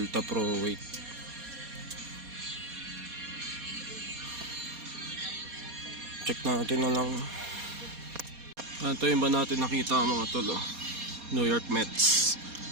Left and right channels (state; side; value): late; left; 4.2 ms